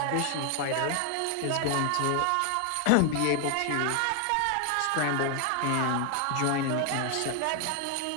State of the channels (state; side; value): different; both; correlation 0.00